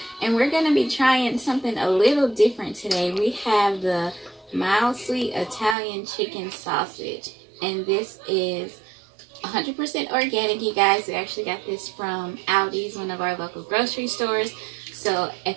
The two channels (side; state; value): left; drops out; at 5.8 s